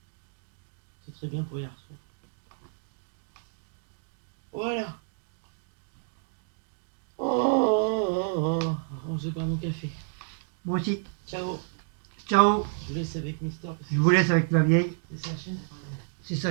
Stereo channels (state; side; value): silent; left; digital silence